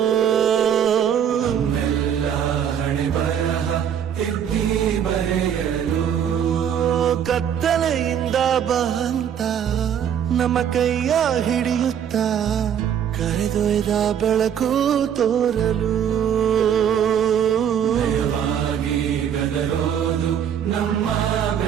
ಹಣೆ ಬರಹ ತಿದ್ದಿ ಬರೆಯಲು ಕತ್ತಲೆಯಿಂದ ಬಂತ ನಮ್ಮ ಕೈಯ ಹಿಡಿಯುತ್ತ ಕರೆದೊಯ್ದ ಬೆಳಕು ತೋರಲು ದಯವಾಗಿ ಗದರೋದು ನಮ್ಮ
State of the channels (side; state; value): left; quieter; 8.8 dB